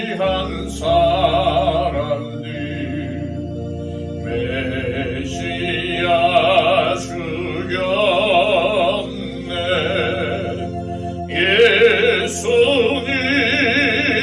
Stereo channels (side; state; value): both; identical; correlation 1.00